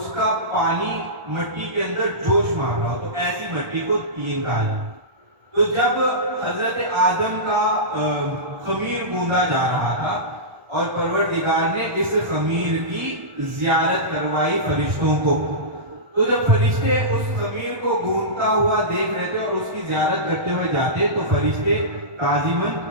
کا پانی مٹی کے اندر جوش مار رہا ہو تو ایسی مٹی کو تین کہا جاتا ہے۔ تو جب حضرت آدم کا خمیر گوندا جا رہا تھا اور پروردگار نے اس خمیر کی زیارت کروائی فرشتوں کو، تو جب فرشتے اس خمیر کو گوندا ہوا دیکھ رہے تھے اور اس کی زیارت کرتے ہوئے جاتے تو فرشتے تعظیماً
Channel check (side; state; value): left; late; 1.3 ms